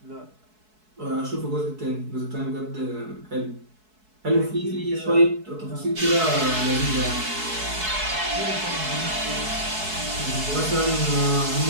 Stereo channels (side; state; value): left; late; 4.6 ms